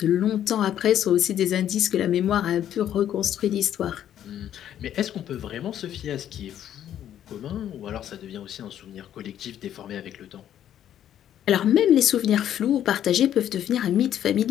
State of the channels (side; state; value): right; quieter; 10.8 dB